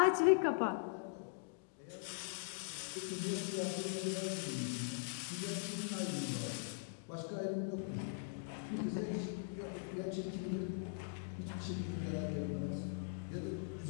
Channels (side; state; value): right; silent; digital silence